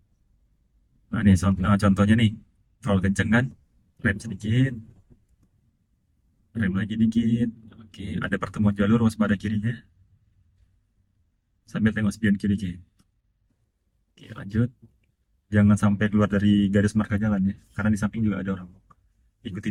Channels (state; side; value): identical; both; correlation 1.00